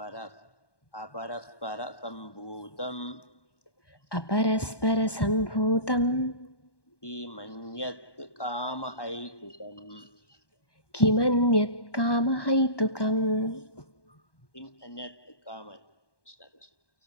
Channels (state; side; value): late; right; 1.1 ms